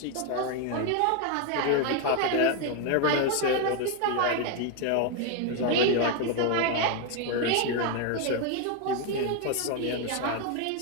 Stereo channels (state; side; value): different; both; correlation 0.01